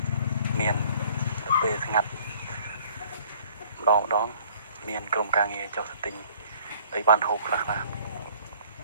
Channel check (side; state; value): both; inverted; correlation -0.57